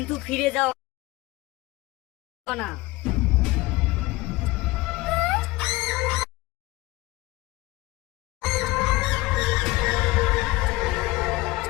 ফিরে যাও না।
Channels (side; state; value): right; quieter; 20.2 dB